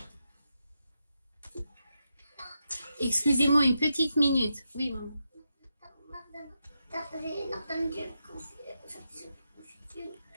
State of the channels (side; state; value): both; inverted; correlation -0.86